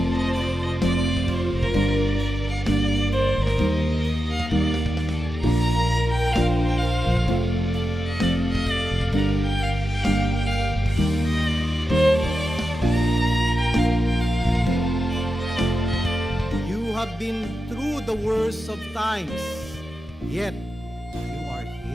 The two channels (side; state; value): both; normal; correlation 0.90